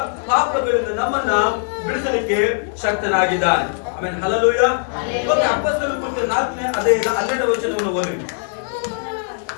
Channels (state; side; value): silent; right; 66 dB below the other